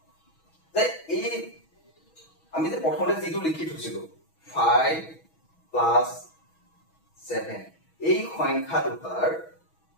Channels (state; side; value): late; right; 6.2 ms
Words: যে এই আমি যে প্ৰথমতে যেটো লিখি থৈছিলো 5 + 7 এই সংখ্যা দুটাৰ